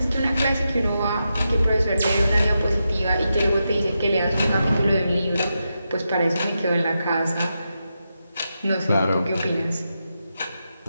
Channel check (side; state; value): both; inverted; correlation -0.87